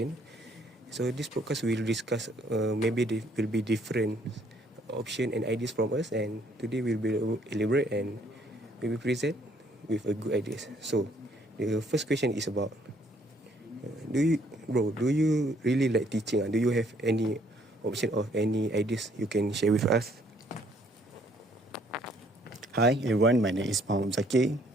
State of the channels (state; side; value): normal; both; correlation 0.65